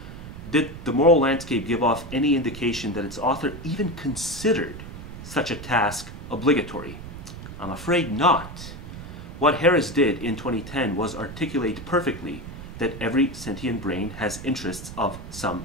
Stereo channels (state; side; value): noise; right; rumble, 12 dB below the sound